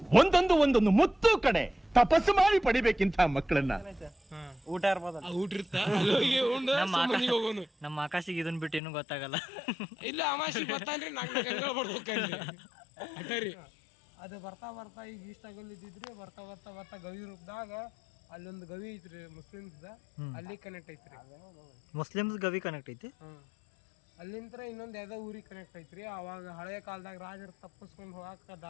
ಒಂದೊಂದು ಮುತ್ತು ಕಡೆ ತಪಸ್ಸು ಮಾಡಿ ಪಡಿಬೇಕಿಂತ ಮಕ್ಕಳನ್ನ. ಊಟ ಇರ್ಬೋದ, ಊಟ ಇರ್ತ ಹೋಗೋನು. ನಮ್ಮ ಆಕಾಶಿಗೆ ಇದನ್ ಬಿಟ್ಟು ಏನು ಗೊತ್ತಾಗಲ್ಲ. ಇಲ್ಲ ಅಮಾಸಿ ಬರ್ತಾನ್ರಿ. 4 ಗಂಟೆ ಬರ್ಬೇಕಂದ್ರಿ ಅಟರಿ. ಅದು ಬರ್ತಾ ಬರ್ತಾ ಈಗ ಇಷ್ಟಾಗಲ್ಲಿದ್ದಿದ್ರಿ. ಬರ್ತಾ ಬರ್ತಾ ಬರ್ತಾ ಗವಿ ರೂಪದಾಗ ಅಲ್ಲೊಂದು ಗವಿ ಐತ್ರಿ ಮುಸ್ಲಿಮ್ಸ್, ಅಲ್ಲಿ ಕನೆಕ್ಟ್ ಐತ್ರಿ. ಮುಸ್ಲಿಮ್ಸ್ ಗವಿ ಕನೆಕ್ಟ್ ಐತಿ. ಅಲ್ಲಿಂತ್ರ ಇನ್ನೊಂದ್ ಯಾವ್ದೋ ಊರಿಗೆ ಕನೆಕ್ಟ್ ಐತ್ರಿ. ಅವಾಗ ಹಳೆಯ ಕಾಲದಾಗ ರಾಜರು ತಪ್ಪಿಸ್ಕೊಂಡು ಹೋಗಾಕ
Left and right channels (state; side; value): drops out; right; at 8.8 s